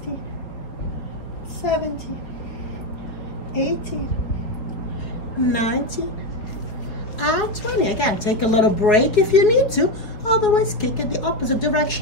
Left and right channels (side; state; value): right; late; 4.8 ms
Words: 17, 18, 19, and 20. Again, take a little break if you need to. Otherwise, kick in the opposite